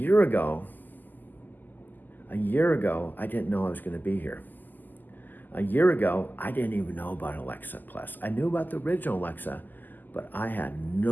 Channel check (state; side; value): late; right; 0.087 ms